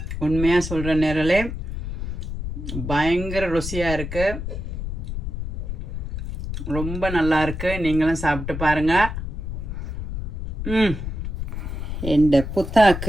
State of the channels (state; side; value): noise; left; rumble, 5 dB below the sound